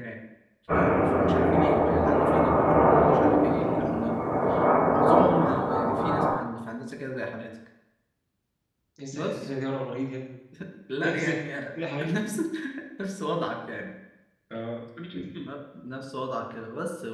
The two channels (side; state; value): both; identical; correlation 1.00